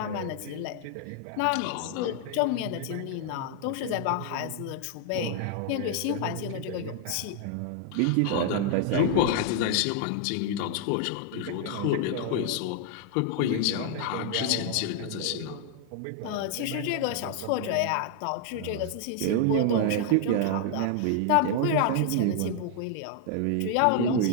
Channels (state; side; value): different; both; correlation 0.00